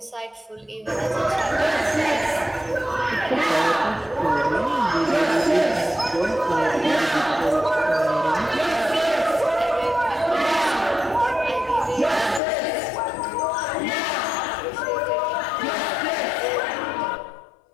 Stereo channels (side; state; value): right; drops out; at 12.4 s